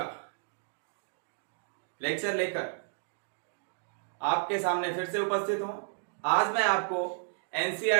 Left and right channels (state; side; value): silent; left; digital silence